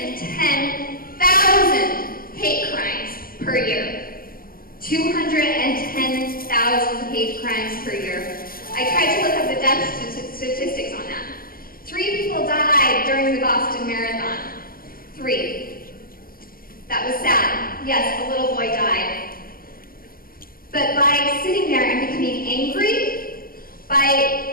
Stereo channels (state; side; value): late; right; 0.42 ms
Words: hate crimes per year? 210,000 hate crimes per year. I tried to look up the death statistics on that. 3 people died during the Boston Marathon. 3. That was sad. Yes, a little boy died. But by sitting there and becoming angry,